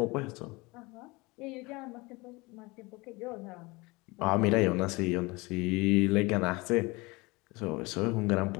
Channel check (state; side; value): quieter; right; 24.3 dB